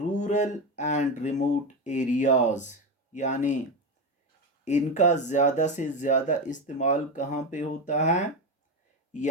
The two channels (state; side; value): normal; both; correlation 0.15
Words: and remote areas. यानी इनका ज़्यादा से ज़्यादा इस्तेमाल कहाँ पे होता है,